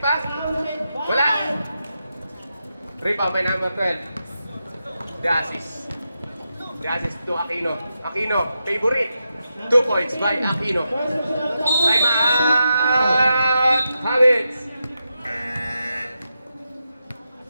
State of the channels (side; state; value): both; inverted; correlation -0.87